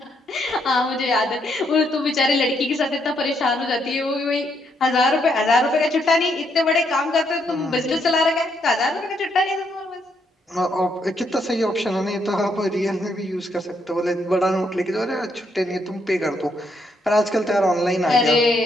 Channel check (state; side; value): normal; both; correlation 0.75